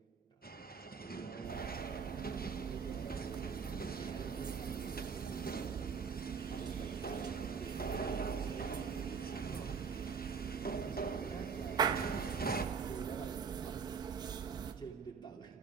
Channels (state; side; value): quieter; left; 6.0 dB